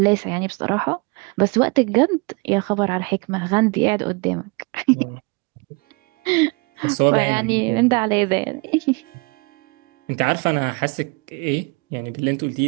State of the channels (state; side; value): quieter; left; 29.8 dB